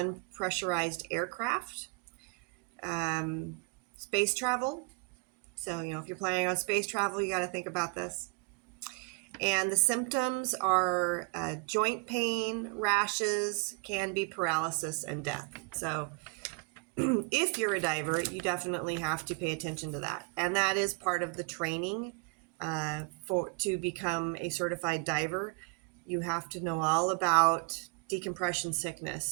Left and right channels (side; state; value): left; quieter; 32.1 dB